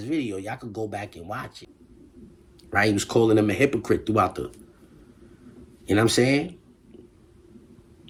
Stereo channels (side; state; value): both; identical; correlation 1.00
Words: video. Y'all could go back and watch it. Right? He was calling him a hypocrite throughout the... You know what I'm saying?